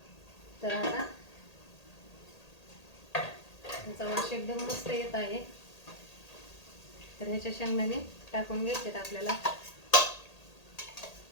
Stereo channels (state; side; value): late; right; 1.8 ms